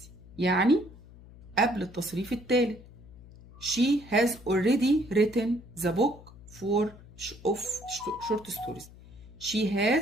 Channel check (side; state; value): left; noise; hum, 20 dB below the sound